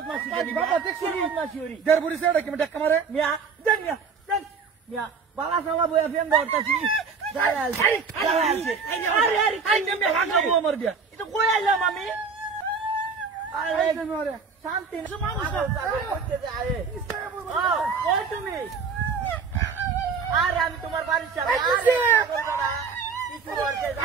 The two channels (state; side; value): quieter; left; 5.3 dB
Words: বালা সালা বইয়া ফেন দরতাছি শান্তি তুমি আরে আমি তোমার বাড়ির সামনে